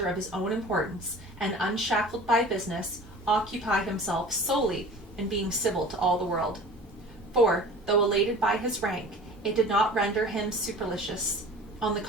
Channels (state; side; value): normal; both; correlation 0.42